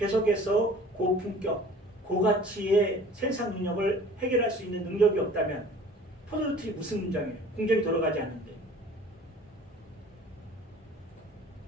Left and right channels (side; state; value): both; normal; correlation 0.47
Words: 고품격 고가치의 생산 능력을 해결할 수 있는 능력이 없다면 포도주틀이 무슨 공장이에요? 공정이 돌아가지 않는데.